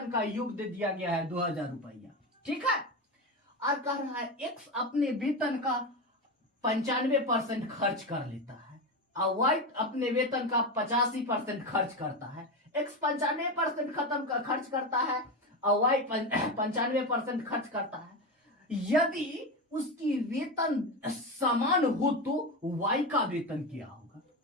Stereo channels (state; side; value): normal; both; correlation 0.18